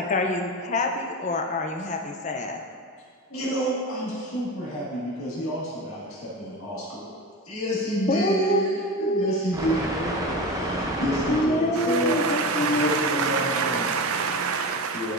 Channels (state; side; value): normal; both; correlation 0.25